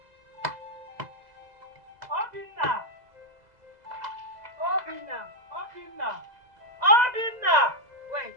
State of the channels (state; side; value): late; left; 2.0 ms